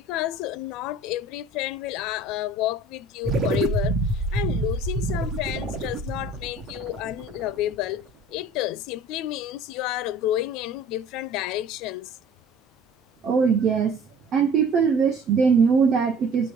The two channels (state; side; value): normal; both; correlation 0.47